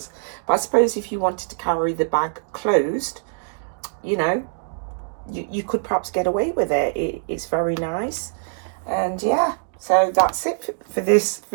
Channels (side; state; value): left; silent; digital silence